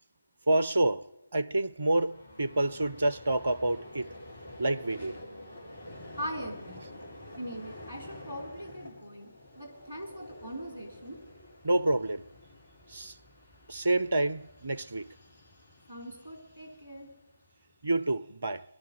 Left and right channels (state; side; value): inverted; both; correlation -0.92